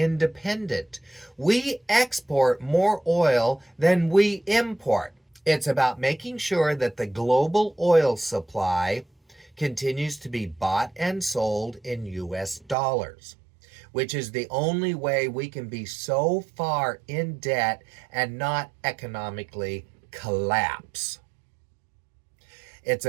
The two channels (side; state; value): left; drops out; at 12.8 s